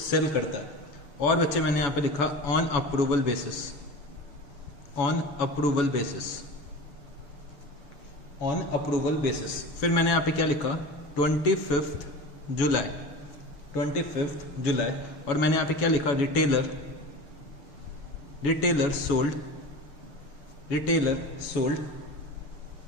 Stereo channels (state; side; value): late; right; 7.1 ms